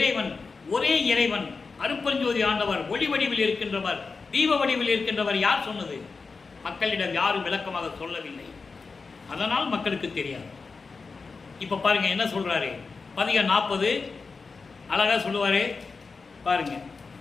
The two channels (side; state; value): right; quieter; 4.5 dB